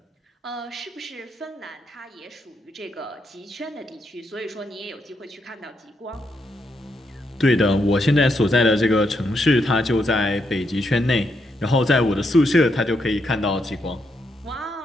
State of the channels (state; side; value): normal; both; correlation 0.79